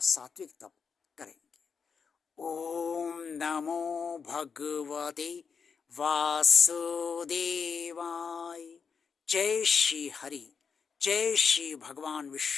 सात्विक तप करेंगे। ओम नमो भगवते वासुदेवाय। जय श्री हरि, जय श्री भगवान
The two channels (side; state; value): right; quieter; 5.9 dB